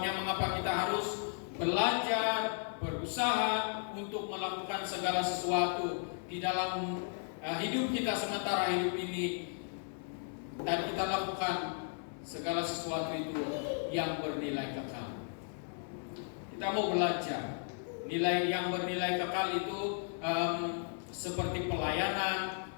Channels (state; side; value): silent; right; 54 dB below the other